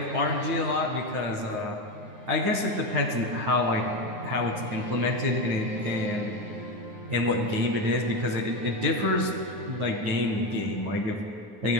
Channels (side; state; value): left; late; 9.6 ms